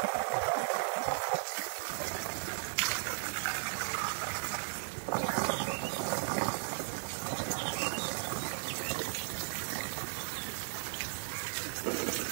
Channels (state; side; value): silent; left; digital silence